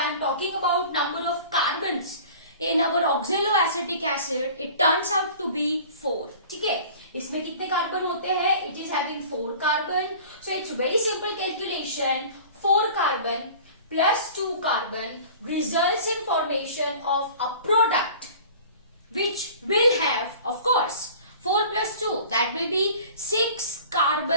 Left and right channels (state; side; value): inverted; both; correlation -0.44